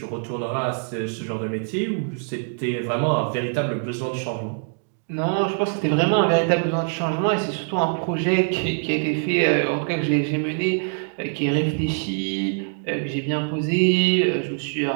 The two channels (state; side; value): silent; left; 63 dB below the other